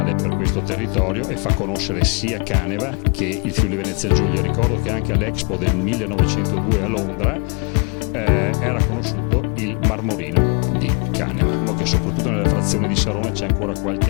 per questo territorio e fa conoscere sia Caneva che il Friuli Venezia Giulia. Ricordo che anche all'Expo del 1902 a Londra era conosciuto il marmorino di Caneva. Diciamo che soprattutto nella frazione di Sarone c'è ancora qualche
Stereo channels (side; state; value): right; quieter; 35.3 dB